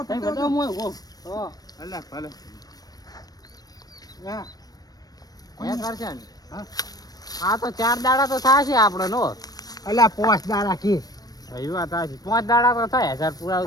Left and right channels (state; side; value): late; right; 0.19 ms